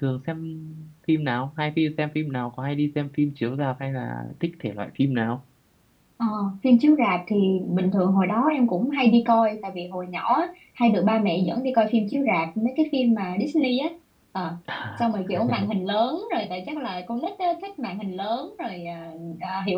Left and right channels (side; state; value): both; identical; correlation 1.00